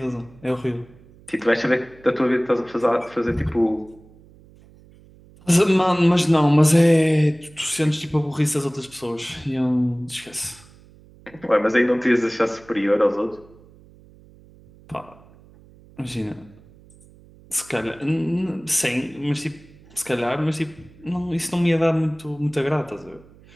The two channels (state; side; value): noise; right; hum, 25 dB below the sound